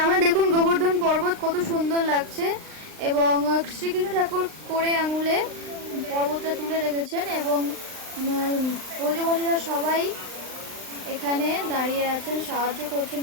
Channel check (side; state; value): left; late; 39 ms